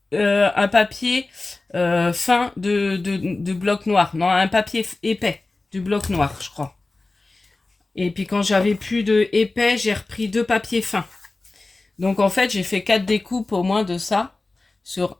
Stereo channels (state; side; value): quieter; right; 3.3 dB